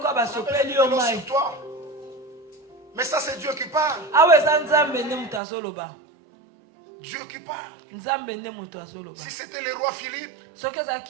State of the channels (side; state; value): left; drops out; at 5.4 s